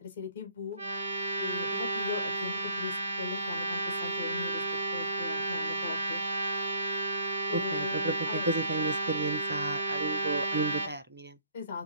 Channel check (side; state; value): both; inverted; correlation -0.62